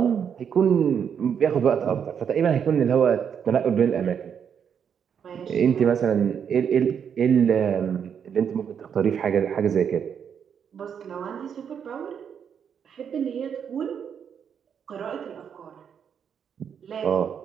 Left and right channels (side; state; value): left; quieter; 7.7 dB